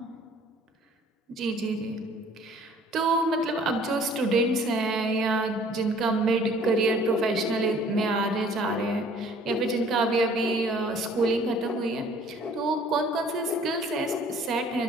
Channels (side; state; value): both; normal; correlation 0.55